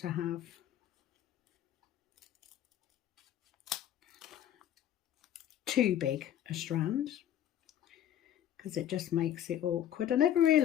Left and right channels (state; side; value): quieter; right; 11.1 dB